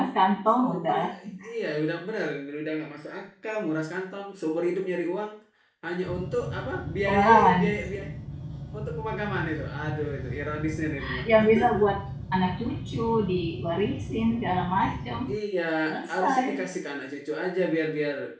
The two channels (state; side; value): identical; both; correlation 1.00